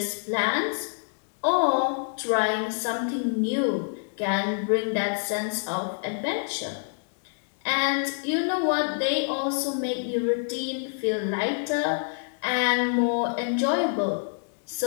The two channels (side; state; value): right; silent; digital silence